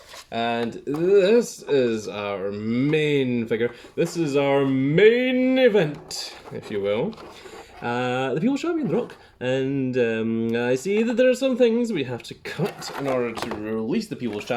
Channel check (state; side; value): identical; both; correlation 1.00